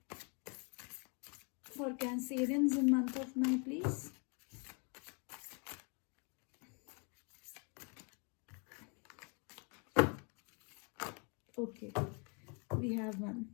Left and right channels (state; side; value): quieter; right; 35.4 dB